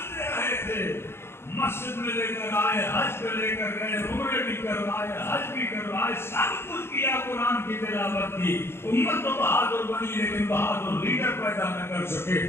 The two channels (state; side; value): late; right; 0.12 ms